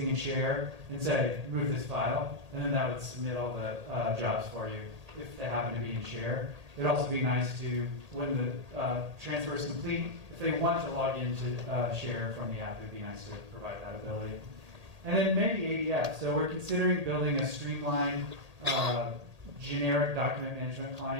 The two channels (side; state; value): left; late; 1.8 ms